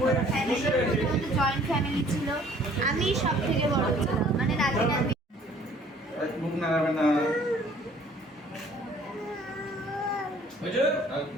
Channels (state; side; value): normal; both; correlation 0.56